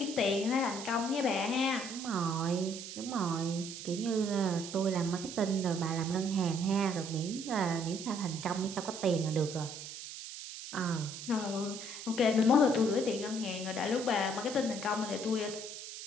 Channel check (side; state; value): right; noise; hiss, 10 dB below the sound